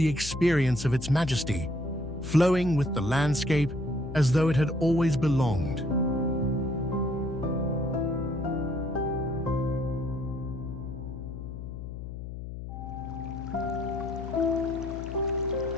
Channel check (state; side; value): noise; left; hum, 9 dB below the sound